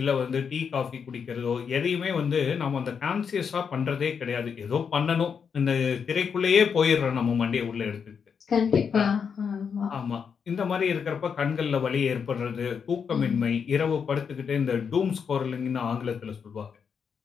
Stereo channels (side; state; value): right; quieter; 6.6 dB